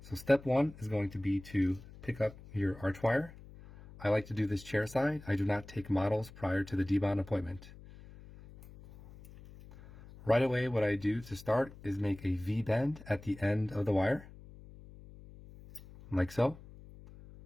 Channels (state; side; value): noise; left; hum, 19 dB below the sound